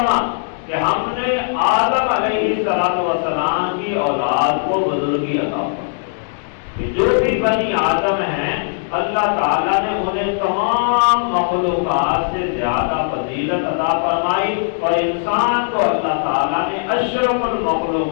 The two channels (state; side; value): silent; right; digital silence